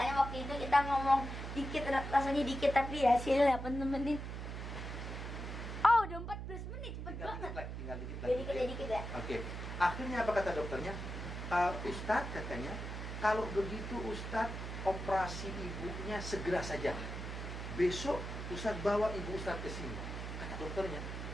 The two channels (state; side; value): noise; right; hum, 6 dB below the sound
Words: waktu itu kita ngomong dikit, rasanya dikit, tapi hasilnya 8 menit. Oh, udah 14 menit, cepet banget. Tinggal dikit lagi. Dikit ya. Oke. Akhirnya apa kata dokternya? Ustadz katanya, kalau begitu Ustadz operasi ibunya segera saja. Besok Ustadz bawa ibu Ustadz ke sini. Kata dokternya